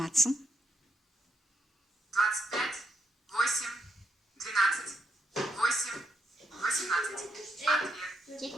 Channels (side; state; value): both; normal; correlation 0.80